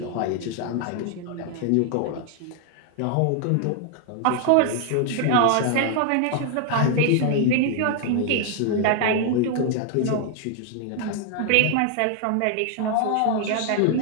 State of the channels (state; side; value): different; both; correlation 0.00